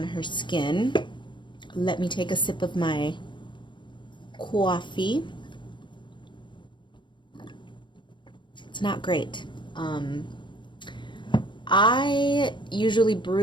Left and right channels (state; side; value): late; right; 0.23 ms